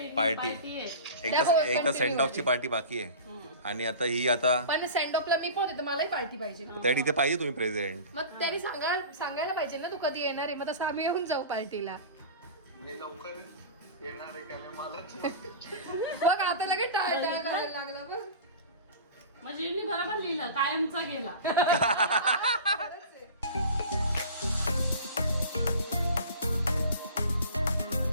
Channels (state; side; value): inverted; both; correlation -0.35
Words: पार्टी party आहे एक तर सेंड ऑफची पार्टी बाकी आहे आणि आता ही आता पण सेंड ऑफला मी पण होते तर मलाही पार्टी पाहिजे ना. त्या इथे पाहिजे तुम्ही प्रेझेंट. मग त्यांनी सांगायला पाहिजे ना तू कधी येणार आहे. मग तसं आम्ही येऊन जाऊ पार्टीला. मी लवकर येणार आहे का नाही मला बघ आता लगेच टाळटाळ करायला लागला बघ. म्हणजे मी बरोबर लिहिलं कायमचा गेला